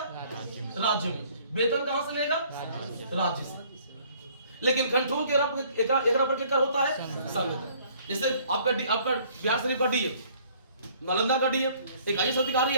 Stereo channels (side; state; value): both; inverted; correlation -0.58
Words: राज्य में। वेतन कहां से लेगा? राज्य से। लेकिन कंट्रोल के एक पर क्या होता है? संघ का। जैसे आपका बिहार शरीफ का डीएम, नालंदा का डीएम एक IAS अधिकारी